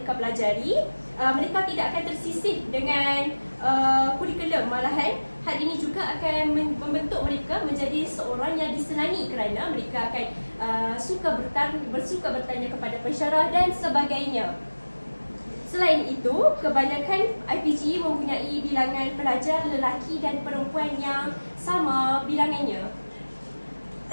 pelajari, mereka tidak akan tersisih dengan kurikulum. Malahan hal ini juga akan membentuk mereka menjadi seorang yang disenangi kerana mereka akan bersuka bertanya kepada pensyarah dan sebagainya. Selain itu, kebanyakan IPG mempunyai bilangan pelajar lelaki dan perempuan yang sama bilangannya.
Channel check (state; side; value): inverted; both; correlation -1.00